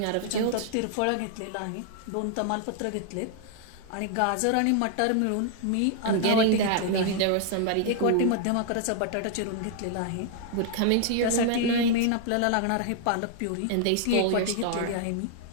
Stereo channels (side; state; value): both; different; correlation 0.00